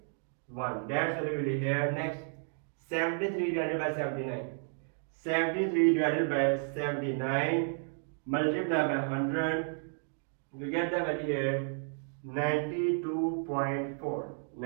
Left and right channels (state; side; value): silent; left; 56 dB below the other